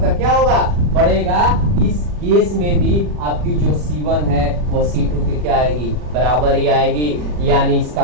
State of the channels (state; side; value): late; left; 40 ms